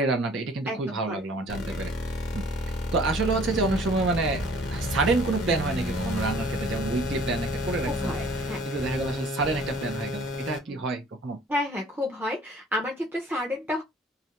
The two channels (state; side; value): normal; both; correlation 0.54